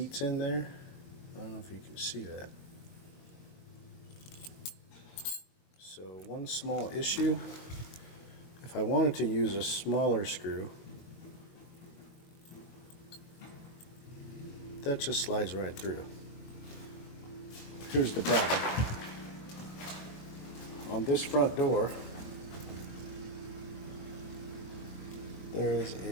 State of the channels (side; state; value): right; late; 21 ms